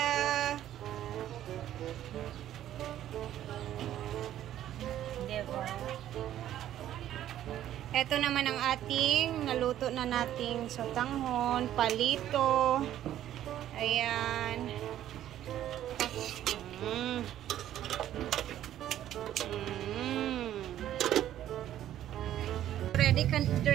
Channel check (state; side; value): quieter; left; 12.0 dB